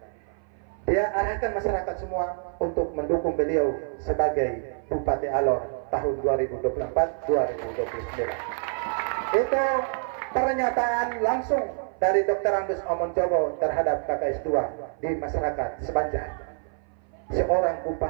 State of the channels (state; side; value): silent; left; 57 dB below the other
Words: Dia arahkan masyarakat semua untuk mendukung beliau sebagai Bupati Alor tahun 2024-2029. Itu pernyataan langsung dari Dr. Andus Amon Jogo terhadap kakak S2 di masyarakat Sebanjar. Seorang